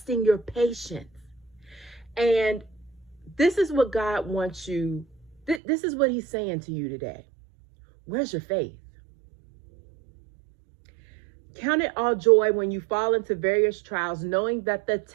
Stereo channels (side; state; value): left; drops out; at 5.6 s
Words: your patience. And this is what God wants you, this is what he's saying to you today. Where's your faith? Count it all joy when you fall into various trials, knowing that the